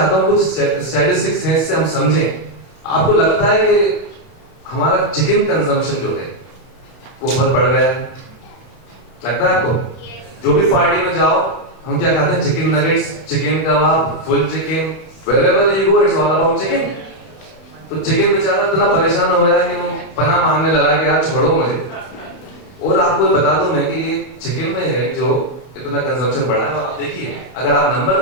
हूं कुछ स्टैटिस्टिक्स हैं, इससे हम समझें। आपको लगता है कि हमारा चिकन कंजम्पशन जो है वो बहुत बढ़ गया है, लगता है आपको? जो भी पार्टी में जाओ हम क्या खाते हैं? Chicken nuggets, chicken kebab, full chicken, wherever you go it's all about chicken। तो चिकन बेचारा इतना परेशान हो गया कि वो पनाह मांगने लगा कि यार छोड़ो मुझे। और आपको बता दूं मैं कि ये चिकन में है जो इतना कंजम्पशन बढ़ा है। आप देखिए, अगर आप नंबर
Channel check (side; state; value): right; late; 31 ms